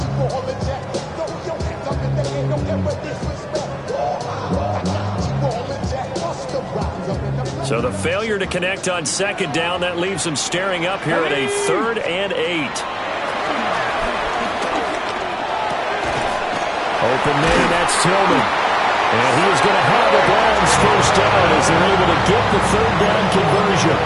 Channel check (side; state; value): both; identical; correlation 1.00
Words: So the failure to connect on 2nd down, that leaves them staring up here at a 3rd and 8. Open man, that's Tillman. And he is going to have the Browns first down as they're able to get the 3rd down conversion.